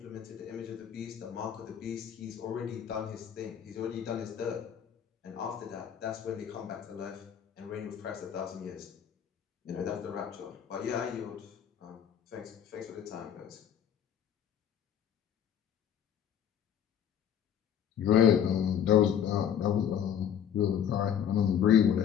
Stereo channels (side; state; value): right; quieter; 9.1 dB